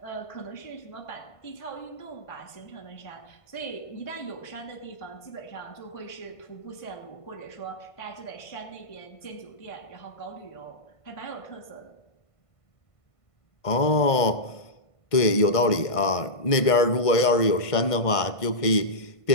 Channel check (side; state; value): right; late; 1.5 ms